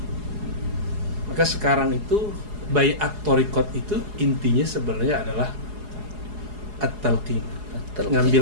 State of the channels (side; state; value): left; late; 4.8 ms